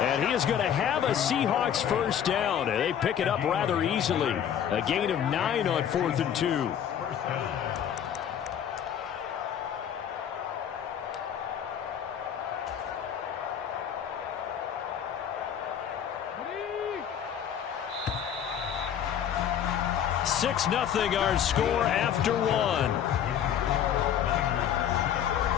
he is going to have a Seahawks first down. And they pick it up rather easily. A gain of 9 on 4th and 2. Nothing our score after 1.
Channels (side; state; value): right; quieter; 9.2 dB